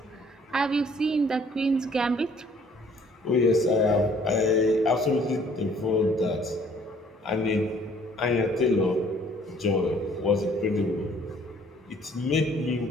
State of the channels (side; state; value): both; normal; correlation 0.59